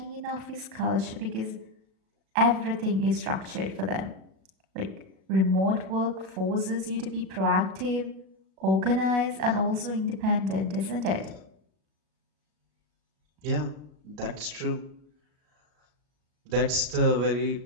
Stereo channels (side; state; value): left; late; 37 ms